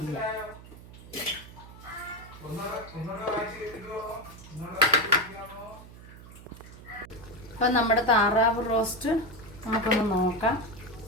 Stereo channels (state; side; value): noise; right; hum, 18 dB below the sound